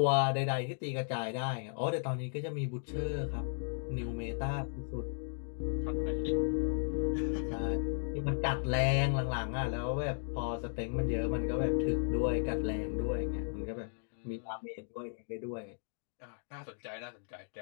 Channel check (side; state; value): right; silent; digital silence